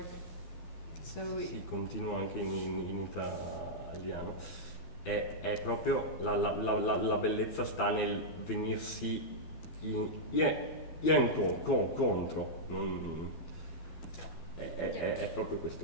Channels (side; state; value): right; late; 12 ms